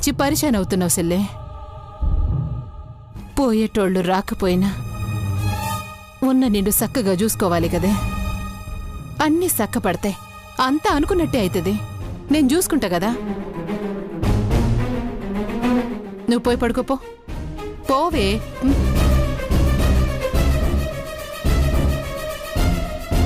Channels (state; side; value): identical; both; correlation 1.00